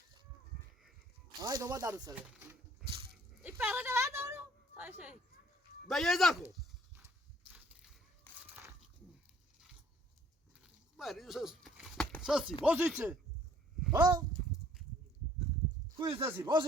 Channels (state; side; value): normal; both; correlation 0.60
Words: هاي دوما دارو سر يبقى هذا دورو. هاي شيء. بيزاكو ما ساسي بوزيتي ها كويس ساسي